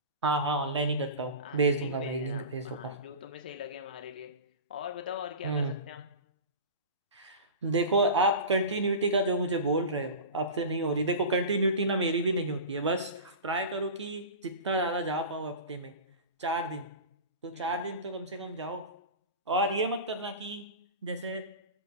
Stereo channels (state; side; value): inverted; both; correlation -0.31